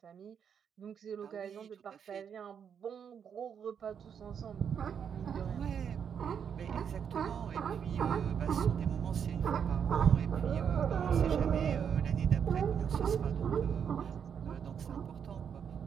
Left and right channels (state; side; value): quieter; left; 7.6 dB